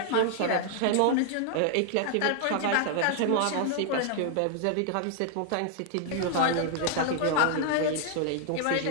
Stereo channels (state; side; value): different; both; correlation 0.00